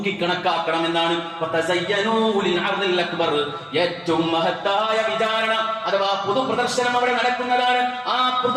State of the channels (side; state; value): both; identical; correlation 1.00